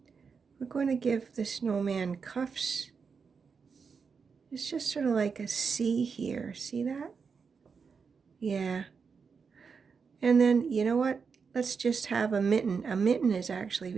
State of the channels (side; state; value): left; quieter; 5.6 dB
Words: we're going to give the snowman cuffs. It's just sort of like a C here. See that? Yeah. And then, you know what? Let's just have a mitten. A mitten is actually